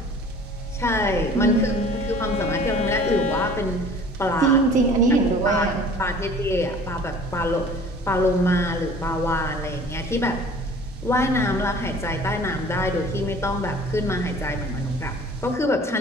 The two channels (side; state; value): both; normal; correlation 0.47